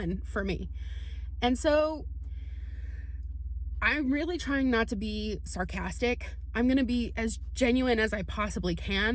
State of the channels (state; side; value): identical; both; correlation 1.00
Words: for me. And so I'm really trying not to be sarcastic. I'm going to be as genuine as I possibly